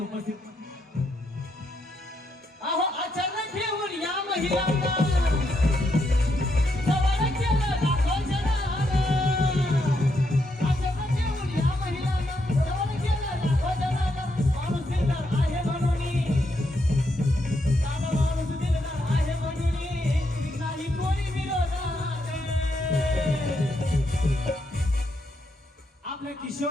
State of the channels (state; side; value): normal; both; correlation 0.79